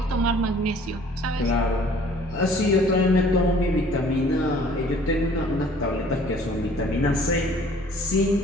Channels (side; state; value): both; normal; correlation 0.54